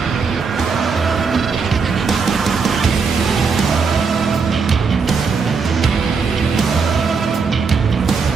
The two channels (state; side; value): quieter; left; 5.2 dB